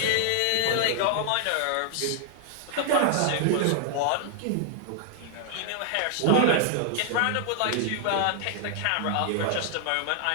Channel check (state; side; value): different; both; correlation 0.00